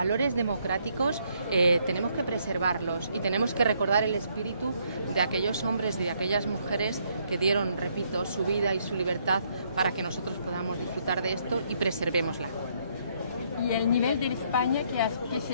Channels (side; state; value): both; inverted; correlation -0.71